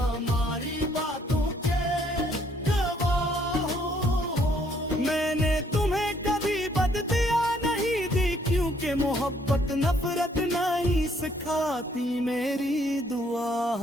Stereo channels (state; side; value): normal; both; correlation 0.66